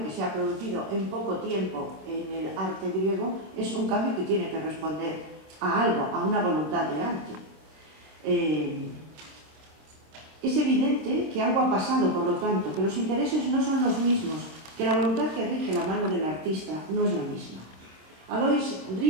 que se ha producido en poco tiempo en el arte griego es un cambio que tiene que responder a algo, a una voluntad de arte. Es evidente que algo ha pasado, por lo tanto, que los intereses no son los mismos, que la voluntad que rige la mano del artista no es la misma. Alois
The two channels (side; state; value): left; late; 26 ms